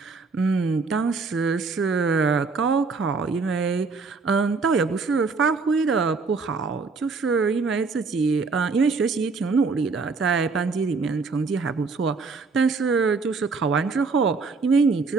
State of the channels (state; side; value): quieter; left; 4.4 dB